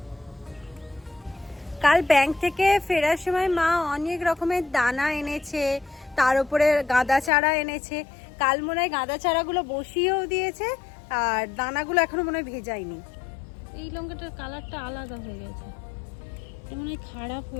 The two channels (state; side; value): drops out; right; at 7.3 s